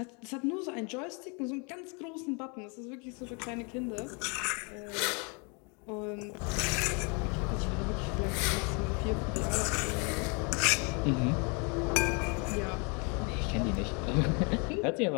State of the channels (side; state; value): right; quieter; 33.5 dB